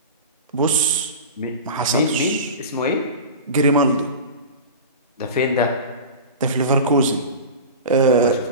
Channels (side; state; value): both; inverted; correlation -0.30